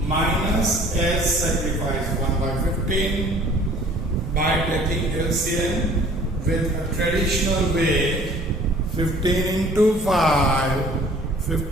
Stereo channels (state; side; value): normal; both; correlation 0.52